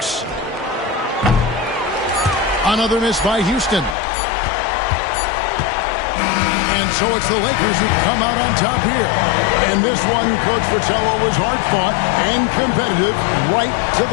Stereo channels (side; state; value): right; drops out; at 4.0 s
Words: Another miss by Houston. And so it's the Lakers who come out on top here. And this one, Coach Fratello, was hard-fought and competitive right to